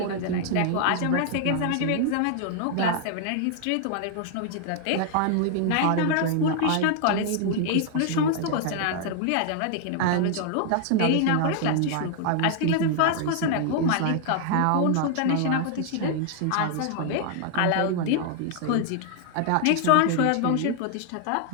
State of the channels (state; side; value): different; both; correlation 0.00